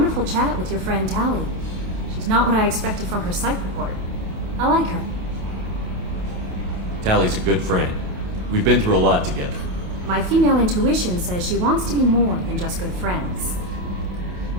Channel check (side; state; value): left; late; 28 ms